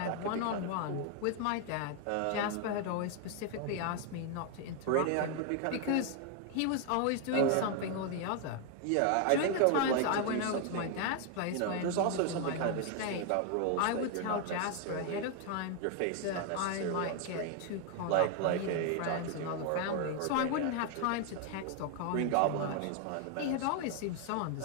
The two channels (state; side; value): different; both; correlation 0.00